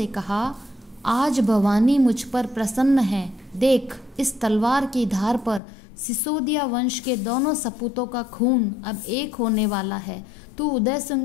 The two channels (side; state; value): right; drops out; at 5.6 s